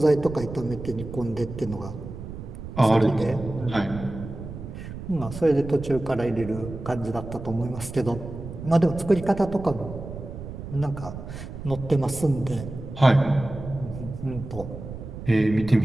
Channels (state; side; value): noise; right; rumble, 10 dB below the sound